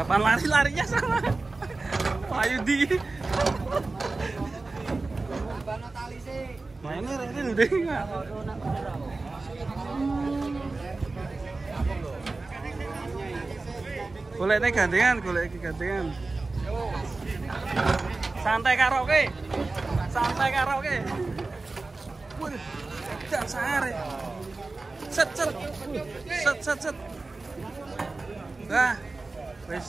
lari-larinya sama. Ayo di. Mainnya Rene udah enggak. Golek gandengan, golek gandengan. Santai karaoke. Santai karaoke. Waduh, jak sare. Set. Nah,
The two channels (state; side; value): quieter; left; 3.5 dB